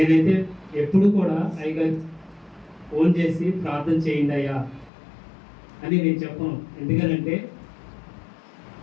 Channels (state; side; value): drops out; right; at 4.9 s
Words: ఎప్పుడు కూడా అయ్యగారు ఫోన్ చేసి ప్రార్థన చేయండి అయ్యా అని నేను చెప్పను. ఎందుకనంటే